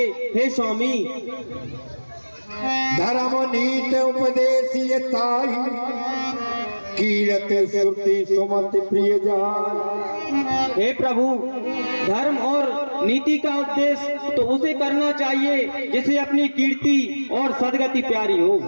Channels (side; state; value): both; inverted; correlation -1.00